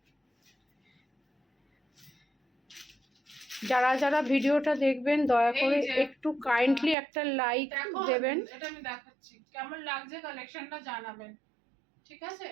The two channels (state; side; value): drops out; left; at 7.0 s